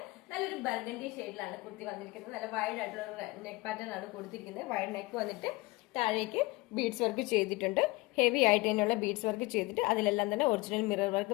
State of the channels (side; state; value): right; quieter; 22.4 dB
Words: നല്ലൊരു ബർഗണ്ടി ഷെയ്ഡിലാണ് കുർത്തി വന്നിരിക്കുന്നത്. നല്ല വൈഡ് ആയിട്ടുള്ള നെക്ക് പാറ്റേൺ ആണ് കൊടുത്തിരിക്കുന്നത്. വൈഡ് നെക്ക് വന്നിട്ട് താഴേക്ക് ബീഡ്സ് വർക്ക് ചെയ്തിട്ടുണ്ട്. ഹെവി ആയിട്ട് തന്നെയുള്ള ബീഡ്സ് വർക്ക് ചെയ്തിട്ട് അതിലെല്ലാം തന്നെ ഒറിജിനൽ മിറർ